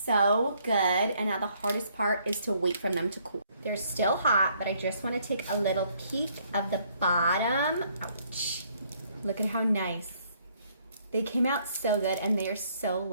good, and now the hardest part is to wait for them to cool. They're still hot, but I just want to take a little peek of the bottom. Ouch. Look at how nice. They came out so good, and they are so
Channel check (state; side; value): inverted; both; correlation -0.67